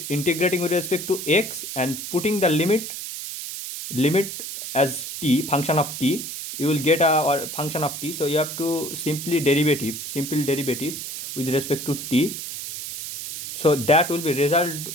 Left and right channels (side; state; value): right; noise; hiss, 7 dB below the sound